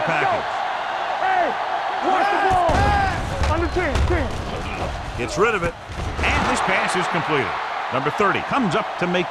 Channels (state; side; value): identical; both; correlation 1.00